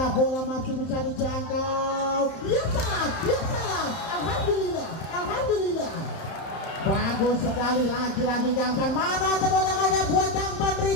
bola masih bisa dijangkau. Ya salah, ya salah. Alhamdulillah, alhamdulillah. Bagus sekali, lagi-lagi Kampan. Mana tepuk tangannya buat Kampan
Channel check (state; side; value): late; right; 31 ms